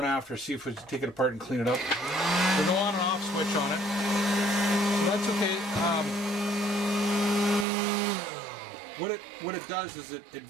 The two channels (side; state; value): left; drops out; at 7.7 s